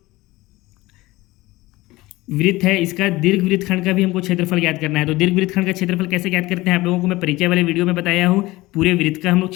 वृत्त है इसका दीर्घ वृत्तखंड का भी हमको क्षेत्रफल ज्ञात करना है। तो दीर्घ वृत्तखंड का क्षेत्रफल कैसे ज्ञात करते हैं आप लोगों को मैं परिचय वाले वीडियो में बताया हूँ। पूरे वृत्त का हम लोग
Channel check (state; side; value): quieter; right; 19.4 dB